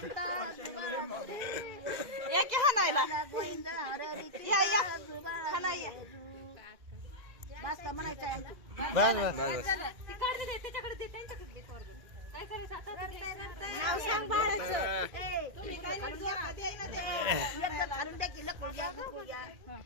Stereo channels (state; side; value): late; left; 2.0 ms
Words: गोविंदा बस का म्हणायचं आहे बस बस त्याच्याकडे दे त्यांच्याकडे नाव सांग बाळाचं. तुम्ही काय नाही जोडा द्याय ना ते. एकदा घालून द्या की लकुल घ्या, गुकुळ घ्या,